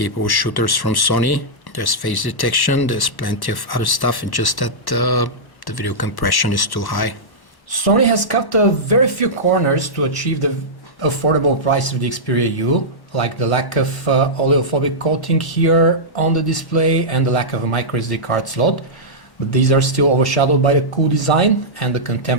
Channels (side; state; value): right; late; 1.1 ms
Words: shooters from Sony. There's face detection, there's plenty of other stuff, and just that the video compression is too high. Sony has cut very few corners to achieve the affordable price of the Xperia U, like the lack of oleophobic coating here on the display and the lack of a micro SD card slot. But these are still overshadowed by the cool design and the